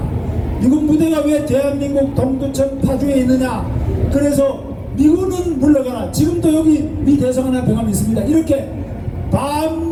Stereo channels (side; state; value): both; identical; correlation 1.00